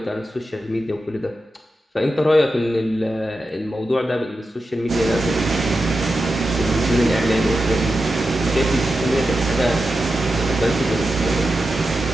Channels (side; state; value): both; normal; correlation 0.90